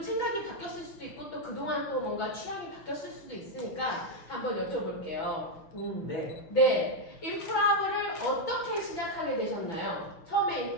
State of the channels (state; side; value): late; right; 6.1 ms